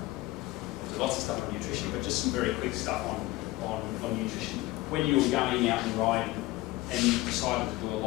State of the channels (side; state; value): right; quieter; 19.0 dB